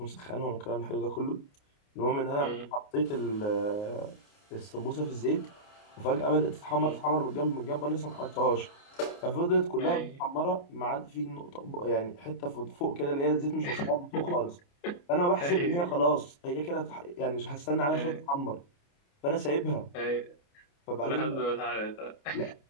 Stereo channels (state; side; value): late; right; 29 ms